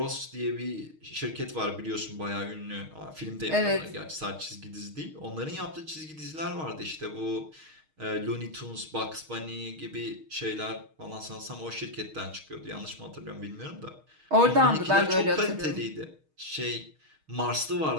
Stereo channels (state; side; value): late; left; 6.4 ms